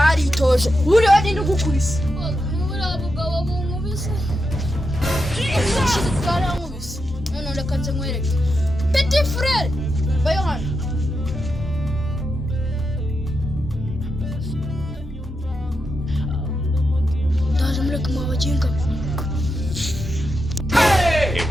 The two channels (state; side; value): normal; both; correlation 0.86